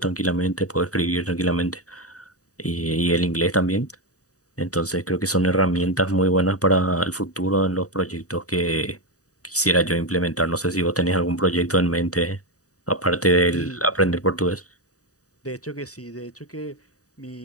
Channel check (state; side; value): late; right; 0.66 ms